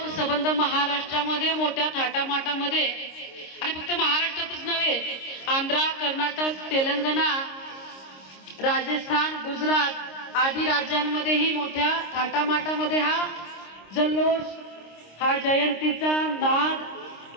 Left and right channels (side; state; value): right; late; 26 ms